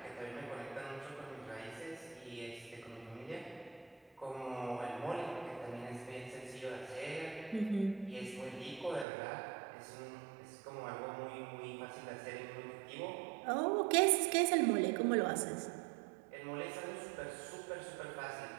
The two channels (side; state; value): left; drops out; at 9.1 s